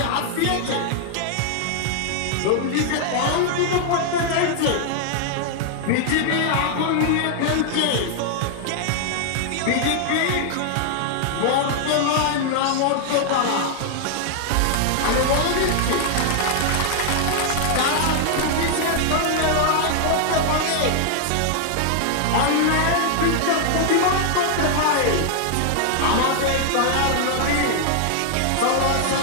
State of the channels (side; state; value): both; different; correlation 0.00